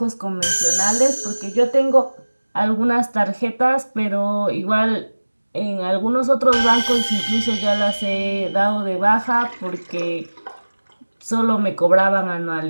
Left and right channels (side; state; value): both; inverted; correlation -1.00